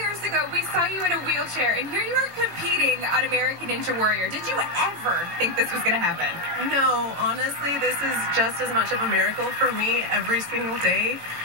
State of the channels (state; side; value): late; left; 18 ms